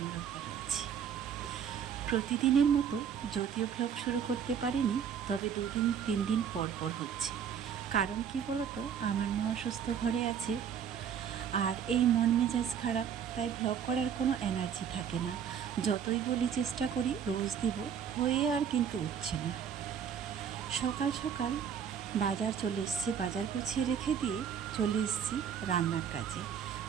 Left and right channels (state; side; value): quieter; left; 8.0 dB